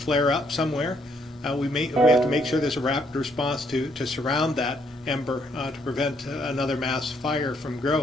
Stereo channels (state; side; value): normal; both; correlation 0.71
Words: up somewhere, we have to make sure there's a rapid response to surround that ember to prevent another mass fire from